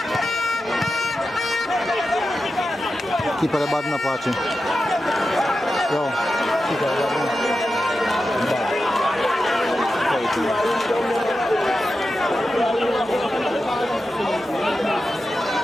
Keeper the bad Apache. Yo, keeper the bad.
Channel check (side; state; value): both; normal; correlation 0.91